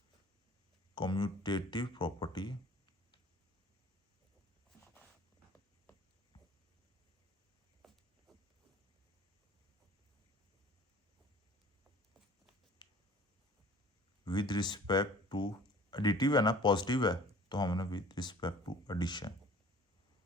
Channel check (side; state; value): both; normal; correlation 0.48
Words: commutative property with respect to, additive है ना, पॉजिटिव है, तो हमने विद रिस्पेक्ट टू एडिशन।